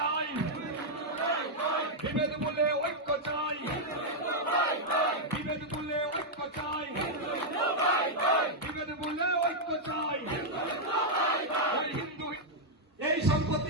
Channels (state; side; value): normal; both; correlation -0.03